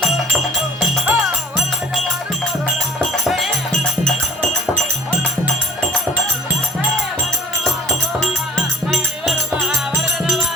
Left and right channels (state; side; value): normal; both; correlation 0.48